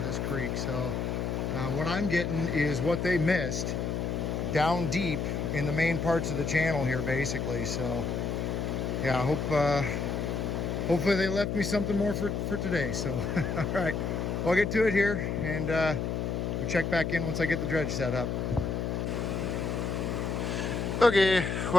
this creek. So what I'm getting is what they missed down deep in the main parts of the channel here, basically. So yeah, I hope hopefully they left me something more for today. So all right, well, I'll get to it here, and we'll check back in once I get the dredge set up. Okay,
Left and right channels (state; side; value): noise; left; hum, 1 dB below the sound